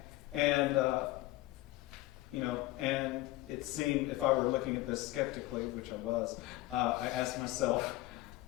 And it seemed, if I were looking at this skeptically, which I was, I asked myself,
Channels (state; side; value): quieter; right; 18.0 dB